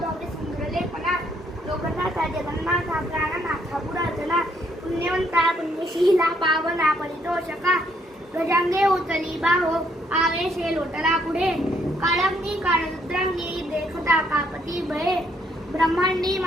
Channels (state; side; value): normal; both; correlation 0.71